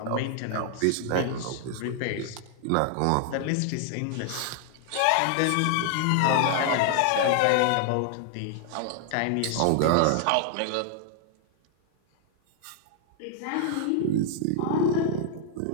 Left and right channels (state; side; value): different; both; correlation 0.00